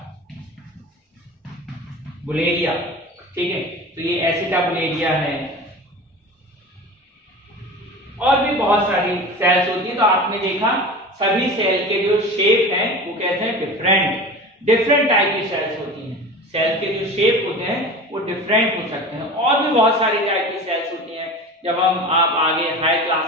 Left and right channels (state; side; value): normal; both; correlation 0.34